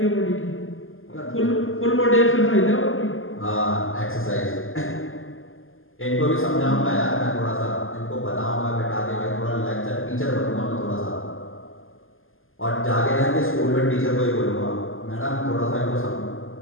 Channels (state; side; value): late; right; 0.59 ms